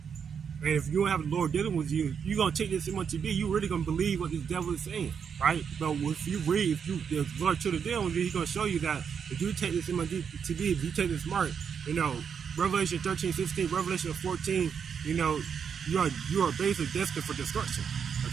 And if you don't have the Lord dealing with you, you're going to take this much to be. You're really going to believe what this devil is saying, right? But if you read, if the Lord truly dealing with you, he's going to show you that if you take this much to be, if you take this mark, you know, Revelation 13:16, Revelation 14, you know, you are basically destined for destruction,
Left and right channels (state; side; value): quieter; left; 7.0 dB